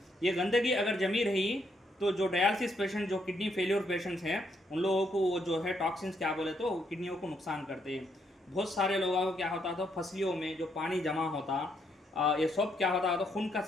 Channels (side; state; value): both; normal; correlation 0.75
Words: ये गंदगी अगर जमी रही तो जो डायलिसिस पेशेंट जो किडनी फेलियर पेशेंट्स हैं उन लोगों को वो जो है टॉक्सिन्स क्या बोले तो किडनियों को नुकसान करते हैं। बहुत सारे लोगों को क्या होता था फसलियों में जो पानी जमा होता ये सब क्या होता तो खून का